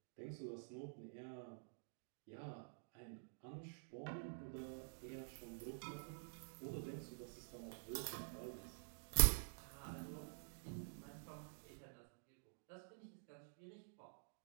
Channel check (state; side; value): silent; left; digital silence